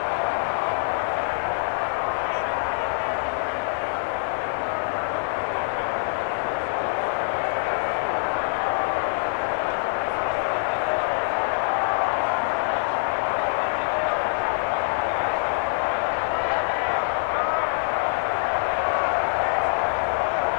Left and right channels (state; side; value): silent; right; 62 dB below the other